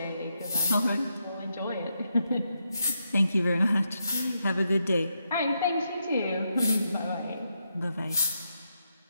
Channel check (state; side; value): inverted; both; correlation -0.83